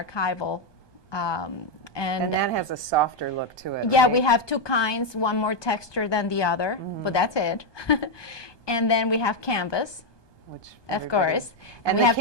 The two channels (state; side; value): late; right; 1.2 ms